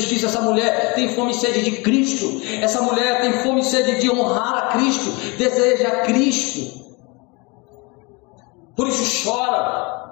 Essa mulher tem fome e sede de Cristo, essa mulher tem fome e sede de honrar a Cristo, deseja a Cristo, por isso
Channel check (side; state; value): right; quieter; 27.9 dB